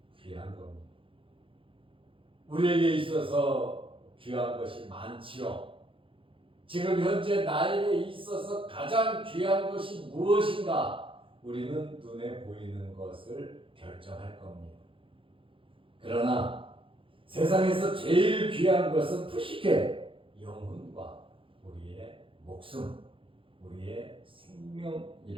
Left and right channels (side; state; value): left; late; 0.25 ms